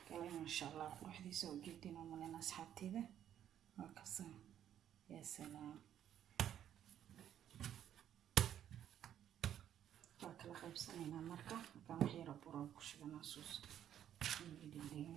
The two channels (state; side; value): quieter; left; 10.4 dB